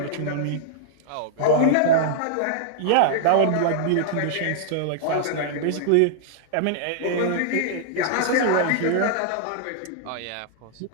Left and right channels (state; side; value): different; both; correlation -0.01